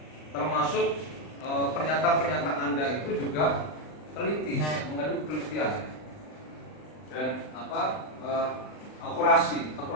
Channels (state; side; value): late; right; 39 ms